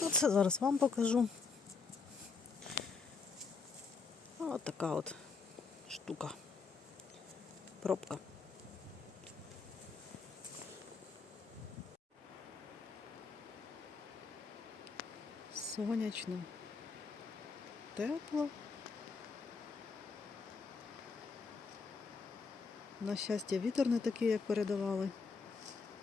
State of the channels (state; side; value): quieter; right; 4.8 dB